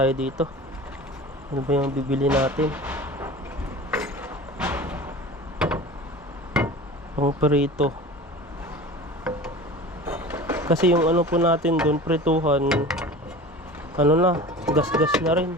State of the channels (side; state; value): both; normal; correlation 0.37